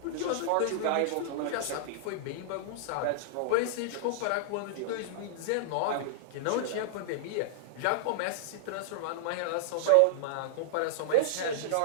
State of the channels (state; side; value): different; both; correlation -0.02